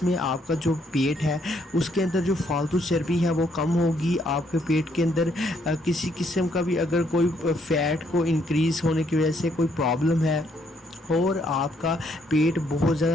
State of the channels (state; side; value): normal; both; correlation 0.71